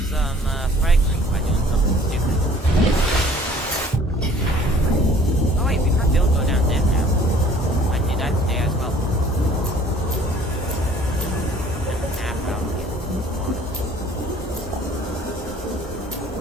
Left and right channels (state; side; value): normal; both; correlation 0.53